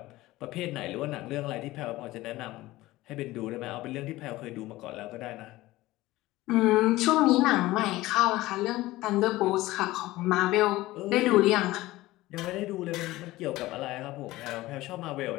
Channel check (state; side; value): quieter; right; 17.9 dB